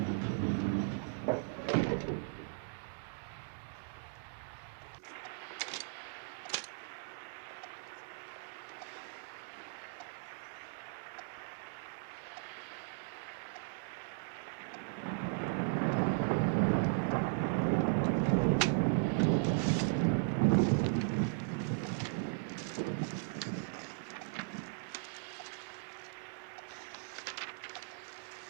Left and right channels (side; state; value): left; silent; digital silence